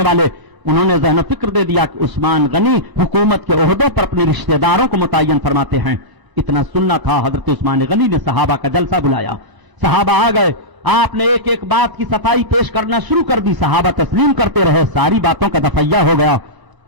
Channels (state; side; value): late; left; 1.0 ms